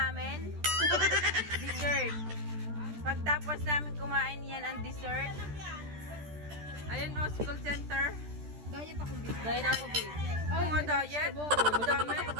Dessert. Pagtapos namin kumain, yan ang dessert. Ayun o, school center. Diet ako, babe. Diet ako, babe. Mga diet? Ang dami.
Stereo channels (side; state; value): left; late; 13 ms